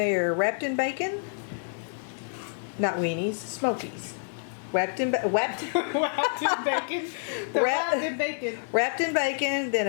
wrapped in bacon. Not weenies, smokies. Wrapped in bacon. Wrapped in bacon. Wrapped in bacon. Wrapped in bacon,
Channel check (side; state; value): right; silent; digital silence